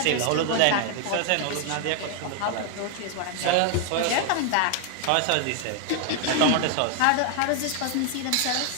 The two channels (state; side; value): different; both; correlation 0.00